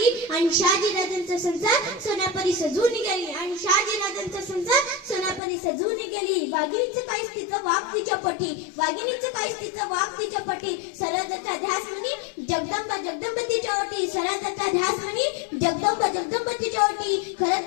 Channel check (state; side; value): drops out; right; at 5.4 s